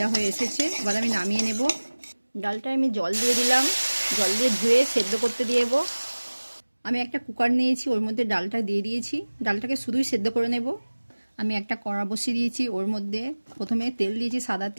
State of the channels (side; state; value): both; inverted; correlation -1.00